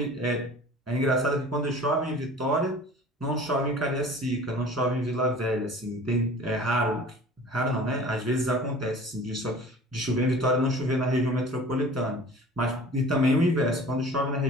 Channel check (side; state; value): both; normal; correlation 0.43